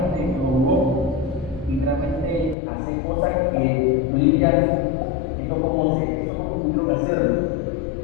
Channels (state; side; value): drops out; right; at 2.6 s